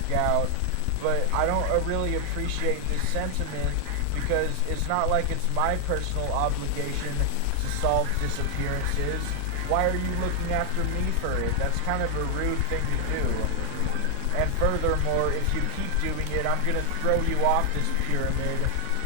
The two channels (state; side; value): different; both; correlation 0.00